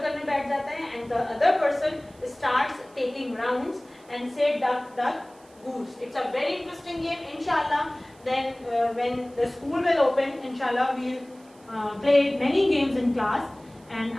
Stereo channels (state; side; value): noise; right; hiss, 29 dB below the sound